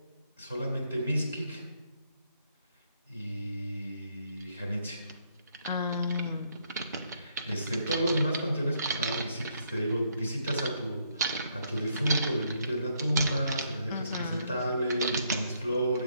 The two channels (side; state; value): both; inverted; correlation -0.72